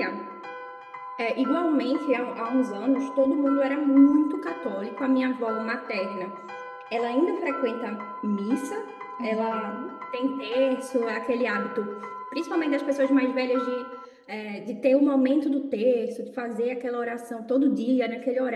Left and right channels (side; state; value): both; identical; correlation 1.00